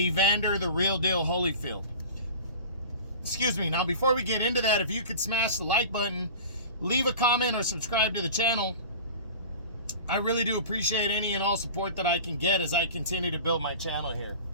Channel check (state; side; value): inverted; both; correlation -0.37